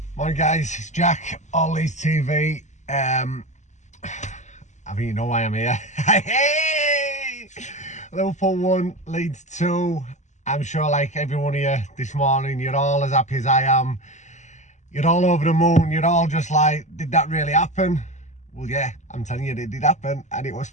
Morning guys, it's Jack, All Leeds TV. I think you know why I'm here. Hey! Liverpool 1, Leeds 2. I'm sure like everyone here this morning, you're all as happy as I am. You're all over the moon, you're all just like, did that really happen? Well yeah, I'm telling you, it did happen and it was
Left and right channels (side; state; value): right; late; 0.34 ms